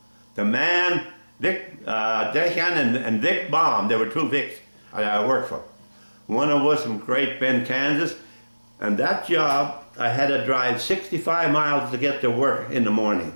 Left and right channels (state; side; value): inverted; both; correlation -1.00